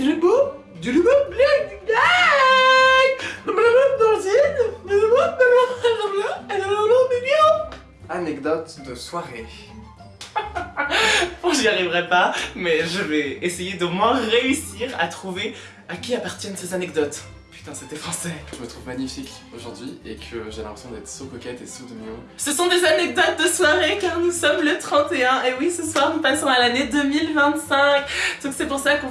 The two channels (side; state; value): both; identical; correlation 1.00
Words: Anecdote de soirée. Bon, j'y arriverai pas, mais je vais essayer d'au moins réussir à trouver à qui appartiennent ces anecdotes. Putain, c'était français. Je me trouve magnifique aujourd'hui et que j'ai l'impression d'être so coquette et so mignon. Ce sont des anecdotes de soirée car nous sommes le 31 et oui, ce soir nous passons à l'année 2025. Donc c'est pour ça qu'on